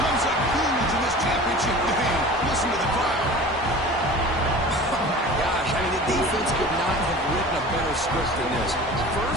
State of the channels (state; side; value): normal; both; correlation 0.39